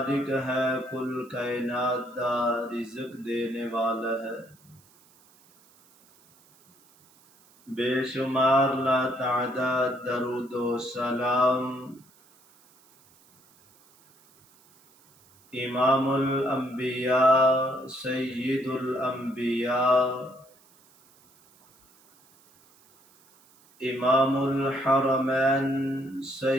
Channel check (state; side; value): noise; right; hiss, 30 dB below the sound